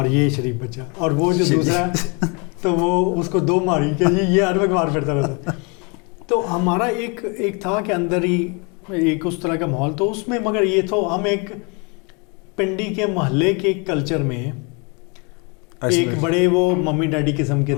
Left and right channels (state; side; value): quieter; right; 32.2 dB